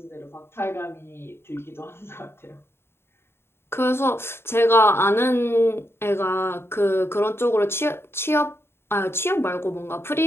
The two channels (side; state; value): right; late; 0.12 ms